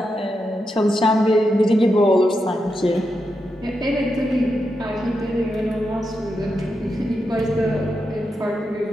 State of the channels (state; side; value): normal; both; correlation 0.86